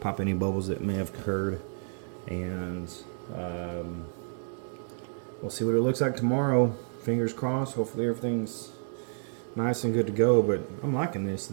any bubbles that may have occurred, and we'll see what it looks like tomorrow. Fingers crossed. Hopefully everything's nice and good to go, but I'm liking this.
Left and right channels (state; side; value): silent; left; digital silence